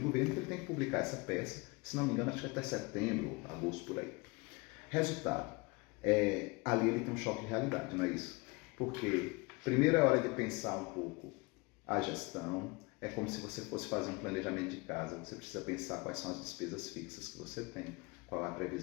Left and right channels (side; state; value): right; quieter; 26.8 dB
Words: que ele tem que publicar essa peça. Se não me engano, acho que até setembro, agosto, por aí. Resultado, ali ele tem um choque de realidade, não é isso? Porque primeiro é hora de pensar um pouco a gestão, é como se você fosse fazer um planejamento de casa, você precisa pensar quais são as despesas fixas que você tem, qual é a